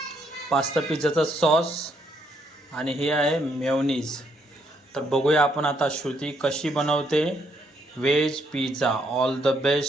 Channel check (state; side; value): normal; both; correlation 0.73